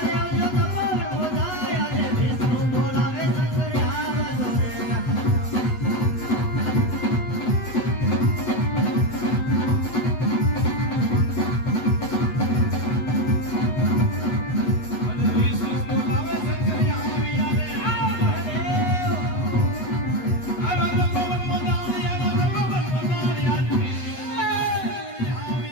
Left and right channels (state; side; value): late; right; 8.1 ms